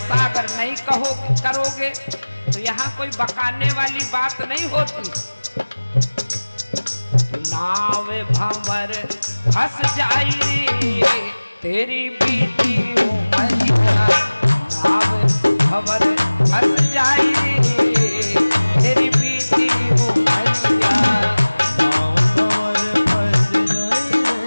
अगर नहीं करोगे तो यहाँ कोई बकाने वाली बात नहीं होती। नाव भंवर फंस जाई तेरी बीती उमरिया, नाव भंवर फंस जाई तेरी बीती उमरिया। नाव भंवर फंस जाई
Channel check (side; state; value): both; inverted; correlation -1.00